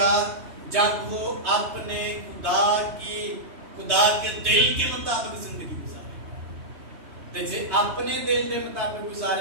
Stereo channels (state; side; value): late; left; 3.3 ms